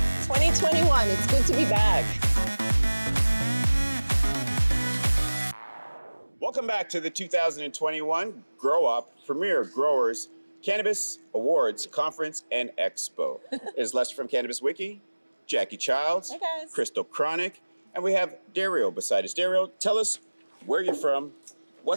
It's good to be back. Welcome back to the 2021 GrowUp Premier Growers Cannabis Awards Conference and Expo. It is Lester from Cannabis-Wiki, Jacqui Childs, Hey guys. Christal Chronic, and we have Dario beside us. Dario, tell us where you're from,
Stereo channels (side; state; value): both; inverted; correlation -1.00